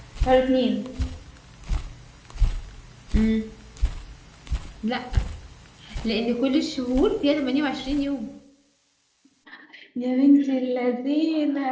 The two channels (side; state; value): both; identical; correlation 1.00